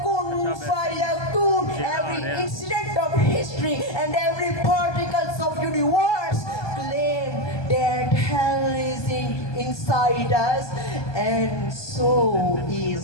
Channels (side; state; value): right; late; 1.2 ms